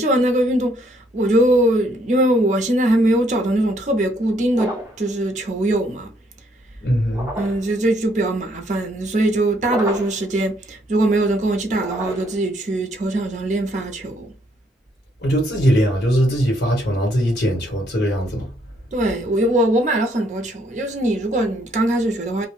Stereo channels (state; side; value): normal; both; correlation 0.69